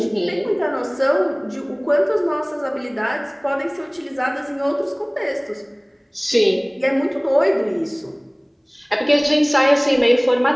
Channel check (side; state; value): both; identical; correlation 1.00